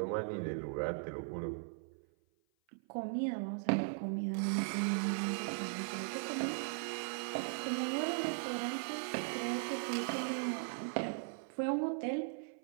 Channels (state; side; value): silent; left; 52 dB below the other